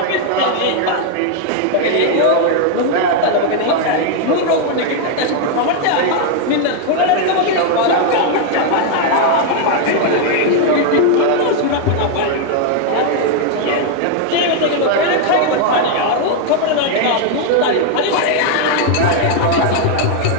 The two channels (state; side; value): different; both; correlation 0.00